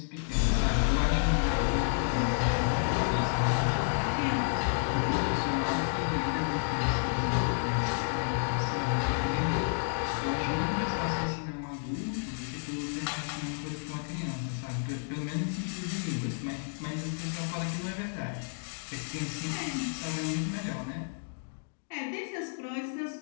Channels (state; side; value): silent; right; digital silence